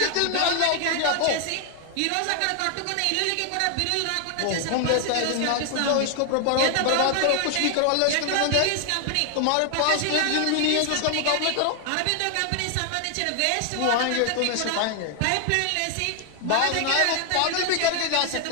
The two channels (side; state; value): both; different; correlation 0.00